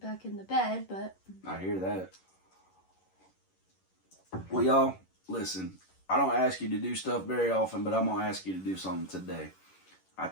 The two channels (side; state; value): right; late; 11 ms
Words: in the bed, but... I hear that. Well, y'all, listen. I don't ask you to do stuff very often, but I'm going to ask you to do something today. I